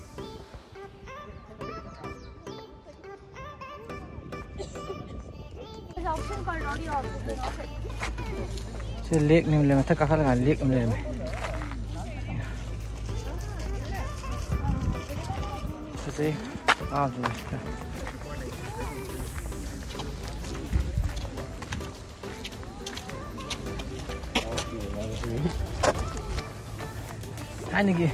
sẽ liếc nem lên tất cả các bạn liếc em lên này sẽ rồi anh này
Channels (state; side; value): identical; both; correlation 1.00